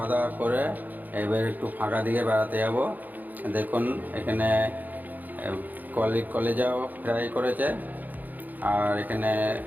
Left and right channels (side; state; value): left; late; 0.083 ms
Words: দাওয়া করে এবার একটু ফাঁকা দিকে বেড়াতে যাব। দেখুন এখানে কলেজাও ফ্রাই করেছে, আর এখানে